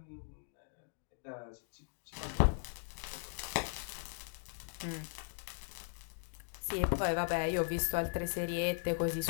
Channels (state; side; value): silent; right; digital silence